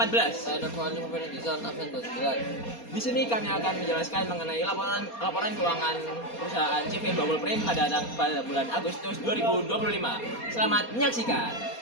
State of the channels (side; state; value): right; late; 4.2 ms